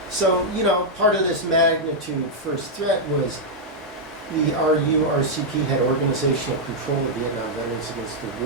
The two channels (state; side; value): normal; both; correlation -0.04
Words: So, you know, part of this magnitude first threat was the RURCP had organizational control of Vietnam veterans against the